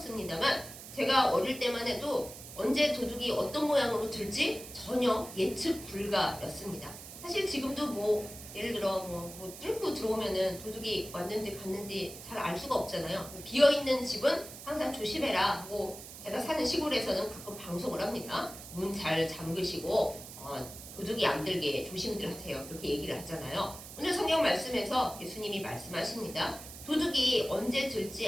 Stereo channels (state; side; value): noise; right; hiss, 13 dB below the sound